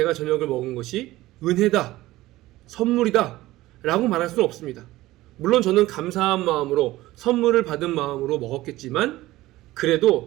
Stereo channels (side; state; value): left; quieter; 17.2 dB